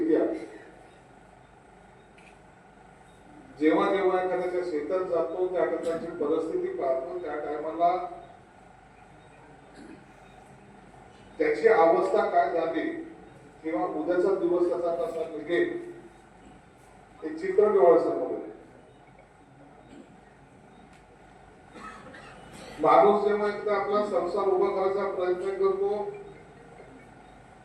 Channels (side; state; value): both; identical; correlation 1.00